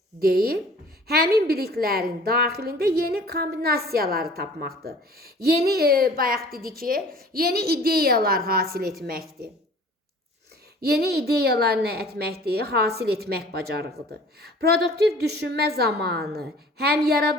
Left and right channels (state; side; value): normal; both; correlation 0.48